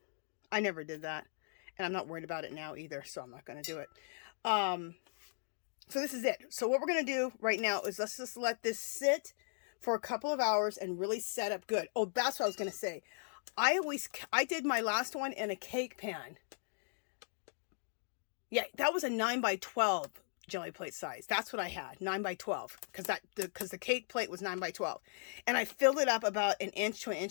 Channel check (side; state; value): right; silent; digital silence